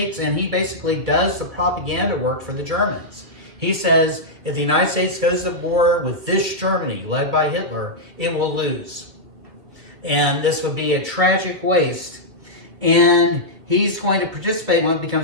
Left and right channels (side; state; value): left; late; 2.3 ms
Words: and he basically does the propaganda work for the Germans. He says, if the United States goes to war with this Germany, led by Hitler, it will lose. And this would be a tragic waste. And he's going to participate in what